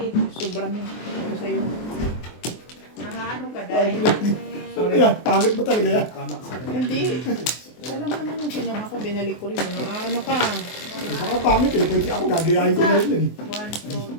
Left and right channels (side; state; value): right; late; 24 ms